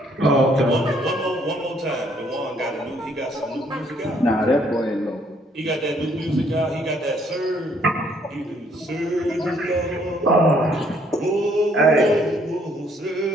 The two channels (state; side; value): normal; both; correlation 0.66